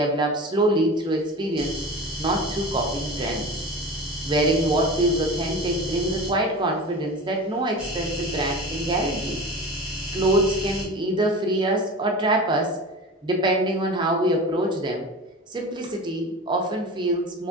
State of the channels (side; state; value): both; normal; correlation 0.32